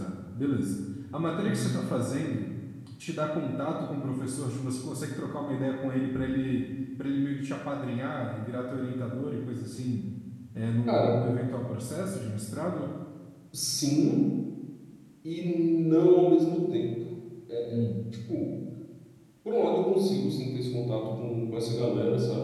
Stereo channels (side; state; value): both; identical; correlation 1.00